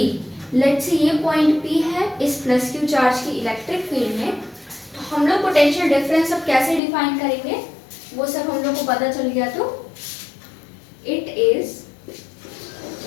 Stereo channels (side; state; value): right; drops out; at 6.8 s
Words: Let's say ये पॉइंट पी है इस प्लस क्यू चार्ज की इलेक्ट्रिक फील्ड में। तो हम लोग पोटेंशियल डिफरेंस अब कैसे डिफाइन करेंगे वो सब हम लोग को पता चल गया। तो it is